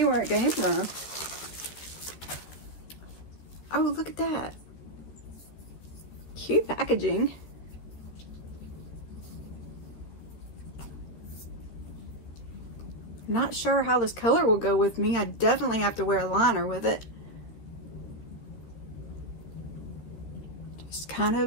where it came from. Oh, look at that. Cute packaging. Not sure how this color will go with me. I definitely have to wear a liner with it. Just kind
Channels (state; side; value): late; right; 14 ms